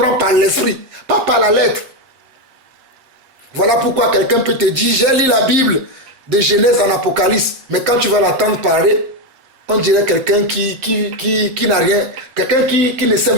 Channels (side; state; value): left; late; 8.0 ms